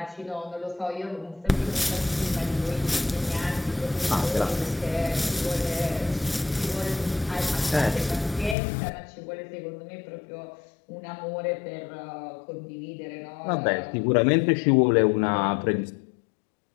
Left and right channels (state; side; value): drops out; right; at 8.6 s